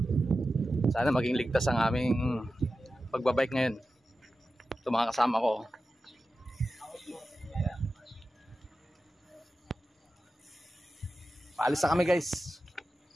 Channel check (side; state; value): both; normal; correlation 0.93